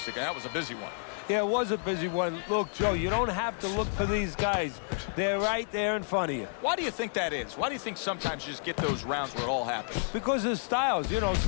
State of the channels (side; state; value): right; silent; 58 dB below the other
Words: And that was a busy one. Yeah, it was a busy one. Look, Joe, you don't have to look for these guys. They're right there in front of you. Why do you think that is? Why do you think sometimes you just get those rounds where it all happens? Because of styles. You know,